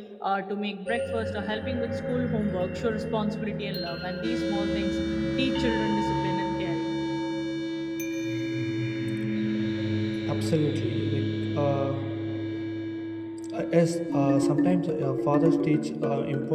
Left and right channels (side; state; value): both; identical; correlation 1.00